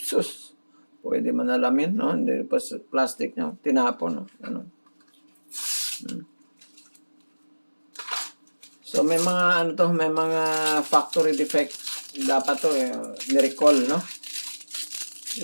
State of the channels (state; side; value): inverted; both; correlation -1.00